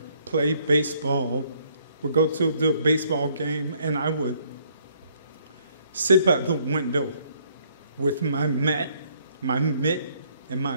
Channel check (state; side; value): inverted; both; correlation -0.66